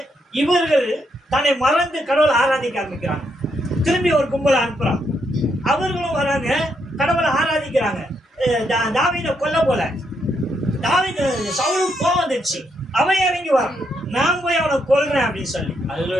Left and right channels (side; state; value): both; normal; correlation 0.78